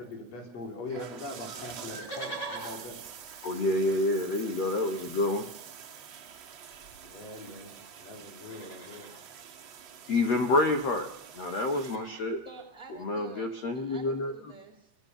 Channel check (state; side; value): late; right; 8.2 ms